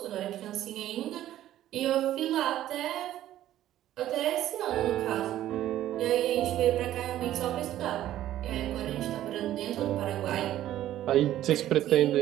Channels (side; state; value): left; quieter; 13.0 dB